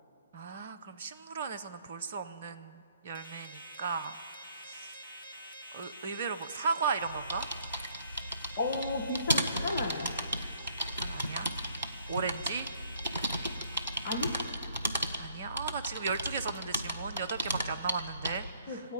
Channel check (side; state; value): both; inverted; correlation -0.64